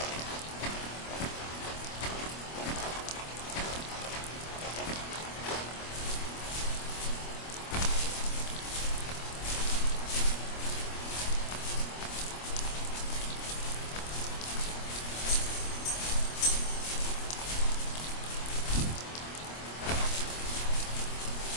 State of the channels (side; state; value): right; late; 25 ms